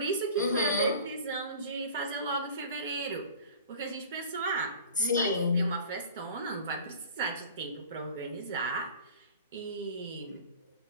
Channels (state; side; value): inverted; both; correlation -0.42